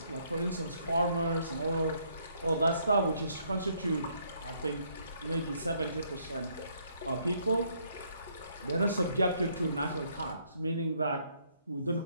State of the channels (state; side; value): inverted; both; correlation -0.69